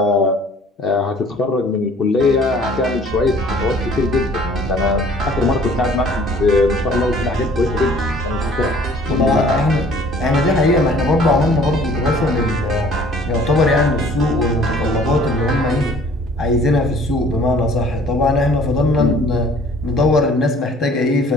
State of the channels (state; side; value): normal; both; correlation 0.54